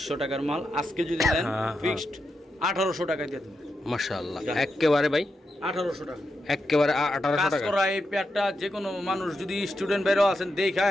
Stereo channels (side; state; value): both; normal; correlation 0.86